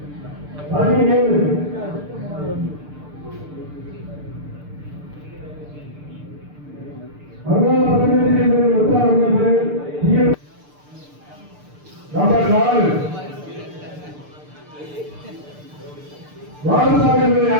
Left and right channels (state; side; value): late; left; 6.7 ms